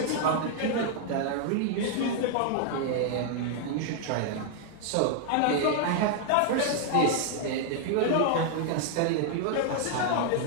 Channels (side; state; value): both; different; correlation 0.00